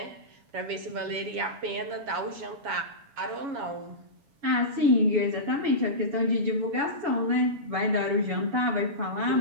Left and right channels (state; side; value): late; left; 7.2 ms